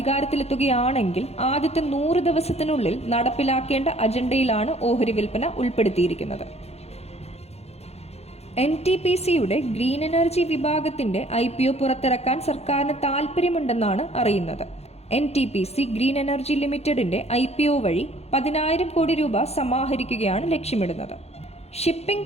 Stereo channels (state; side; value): late; right; 0.31 ms